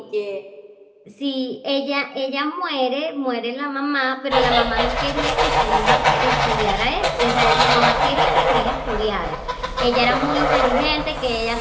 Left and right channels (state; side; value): identical; both; correlation 1.00